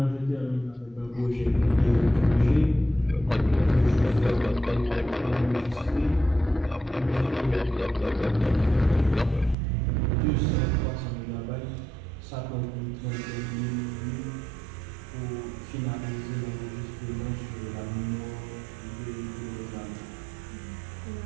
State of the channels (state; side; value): drops out; left; at 9.6 s